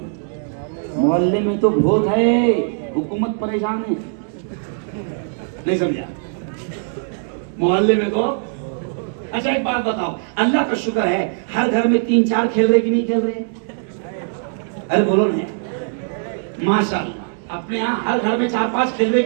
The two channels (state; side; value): silent; left; digital silence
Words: मोहल्ले में तो बहुत है, हुकूमत परेशान है, नहीं समझा? मोहल्ले में तो, अच्छा एक बात बताओ, अल्लाह का शुक्र है हर घर में 3-4 खेल रहे कि नहीं खेल रहे? अरे बोलो ना, माशाअल्लाह, अपने यहाँ हर घर में 4-5 खेल रहे